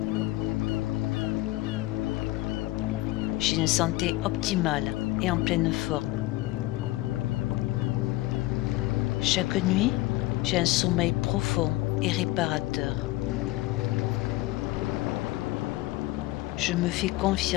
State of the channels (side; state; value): right; quieter; 18.5 dB